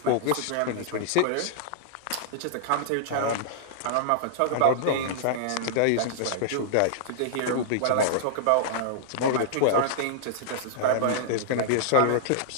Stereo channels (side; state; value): both; different; correlation -0.01